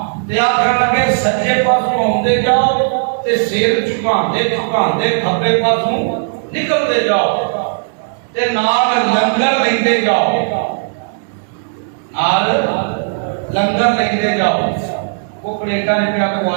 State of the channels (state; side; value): silent; left; digital silence